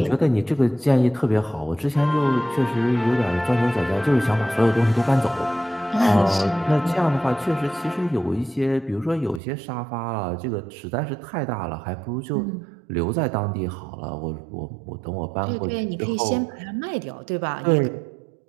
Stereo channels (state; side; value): drops out; left; at 9.4 s